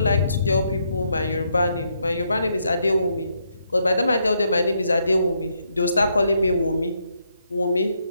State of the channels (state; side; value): inverted; both; correlation -0.76